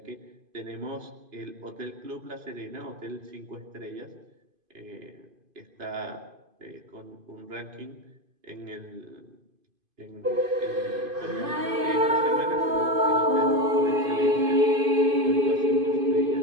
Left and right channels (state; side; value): late; left; 2.5 ms